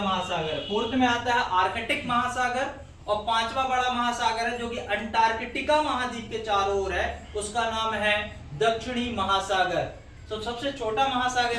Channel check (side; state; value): both; identical; correlation 1.00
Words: फोर्थ में आता है आर्कटिक महासागर, और 5वां बड़ा महासागर है जो कि अंटार्कटिका महाद्वीप के चारों ओर है, उसका नाम है दक्षिणी महासागर। तो सबसे छोटा